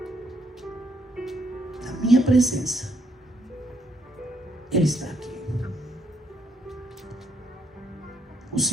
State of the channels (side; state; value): both; normal; correlation 0.72